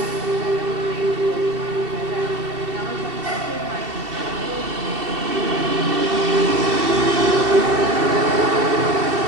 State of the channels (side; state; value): left; late; 2.7 ms